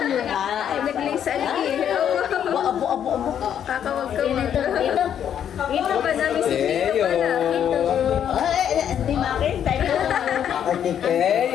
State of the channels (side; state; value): right; quieter; 9.3 dB